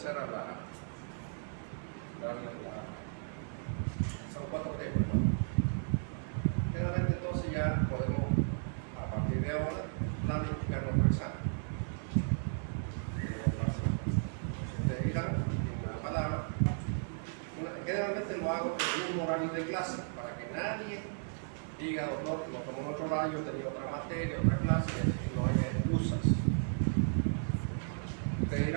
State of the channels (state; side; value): silent; left; digital silence